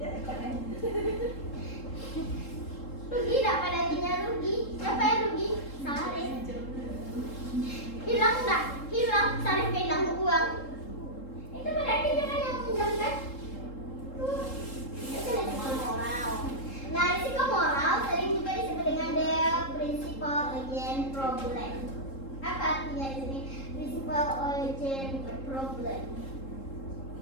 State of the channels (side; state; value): right; late; 3.7 ms